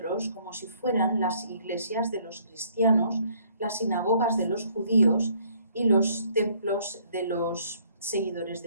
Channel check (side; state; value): both; inverted; correlation -0.62